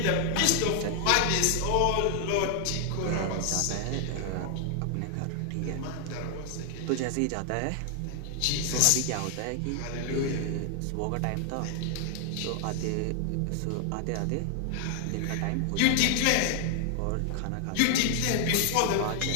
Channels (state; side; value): different; both; correlation 0.00